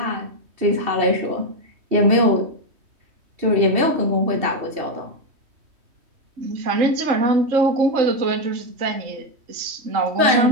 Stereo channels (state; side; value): late; left; 3.1 ms